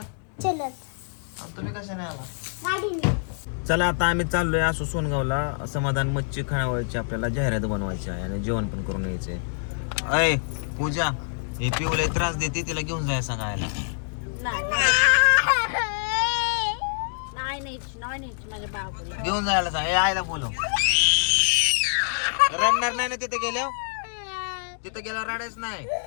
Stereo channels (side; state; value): right; silent; digital silence